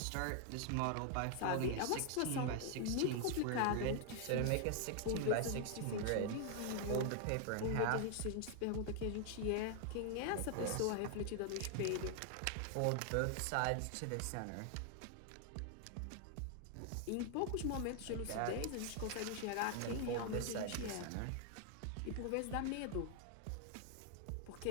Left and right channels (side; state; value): both; different; correlation 0.00